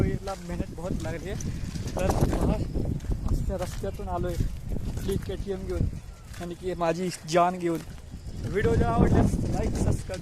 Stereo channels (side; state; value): both; identical; correlation 1.00